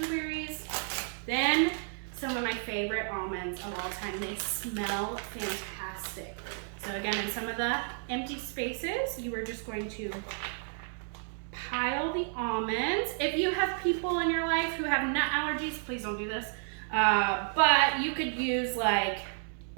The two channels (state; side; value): silent; left; 57 dB below the other